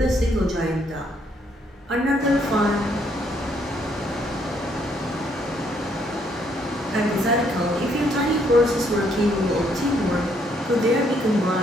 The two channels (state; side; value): normal; both; correlation 0.70